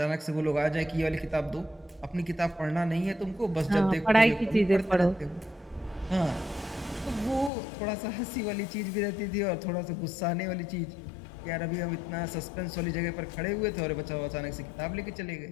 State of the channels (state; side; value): drops out; right; at 7.5 s